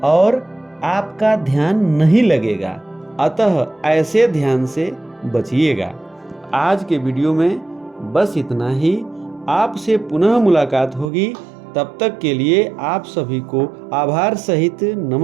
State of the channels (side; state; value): left; drops out; at 11.1 s